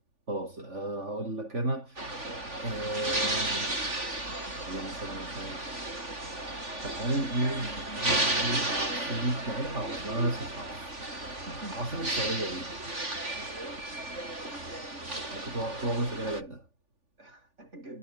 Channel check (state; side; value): late; left; 3.5 ms